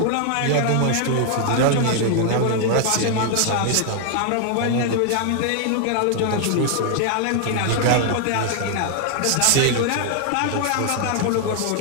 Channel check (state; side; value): different; both; correlation 0.00